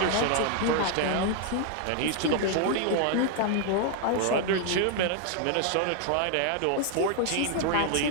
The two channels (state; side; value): different; both; correlation 0.00